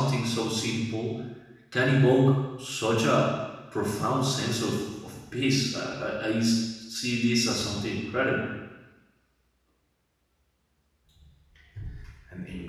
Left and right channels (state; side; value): identical; both; correlation 1.00